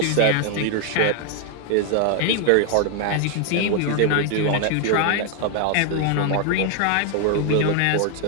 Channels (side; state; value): both; different; correlation 0.01